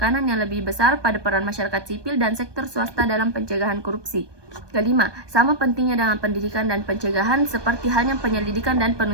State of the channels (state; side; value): late; left; 1.2 ms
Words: yang lebih besar pada peran masyarakat sipil dan sektor swasta dalam pencegahan korupsi. Kelima, sama pentingnya dengan pendidikan dan pencegahan seperti halnya penyelidikan dan